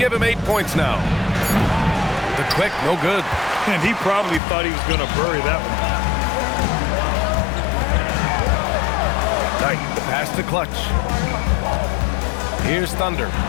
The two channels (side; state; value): right; drops out; at 4.4 s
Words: him 8 points now. The quick, no good. And he probably thought he was going to bury that one. Knight, the pass to Clutch. Here's Thunder